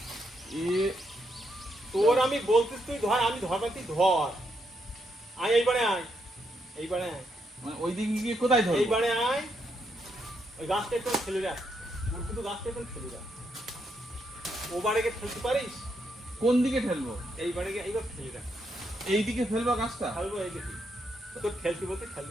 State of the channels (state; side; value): normal; both; correlation 0.79